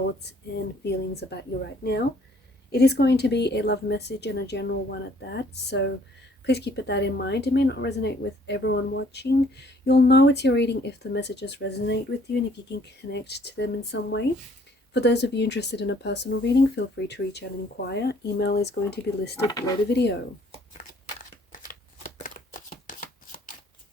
and feelings about you right now. It is going to be a love message and a general one at that, so please keep that in mind. It may not resonate with everyone watching. You'll know it's your reading if the messages resonate with you and if you can connect to them in some way. For those of you interested in a personal reading, feel free to reach out and inquire. Email is going to be listed below the video.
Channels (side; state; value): both; normal; correlation 0.61